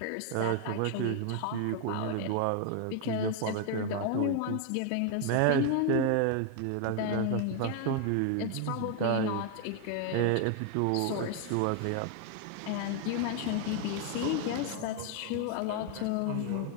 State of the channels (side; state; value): both; different; correlation 0.01